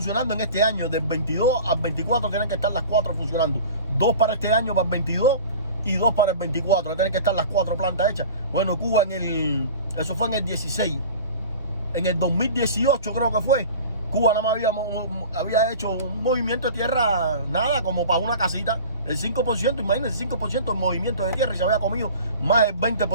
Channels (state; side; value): inverted; both; correlation -0.39